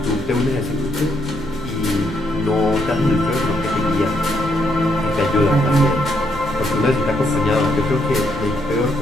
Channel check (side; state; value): right; noise; hum, 15 dB below the sound